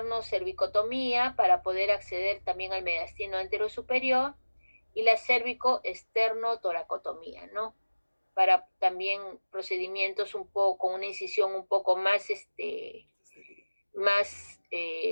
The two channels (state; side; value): inverted; both; correlation -1.00